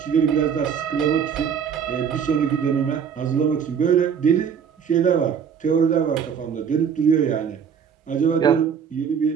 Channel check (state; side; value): quieter; left; 7.2 dB